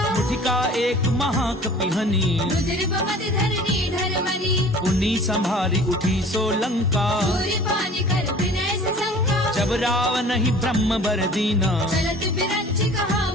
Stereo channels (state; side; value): normal; both; correlation 0.46